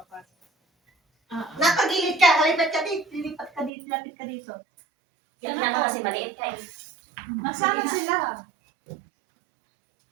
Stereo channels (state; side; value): drops out; left; at 3.7 s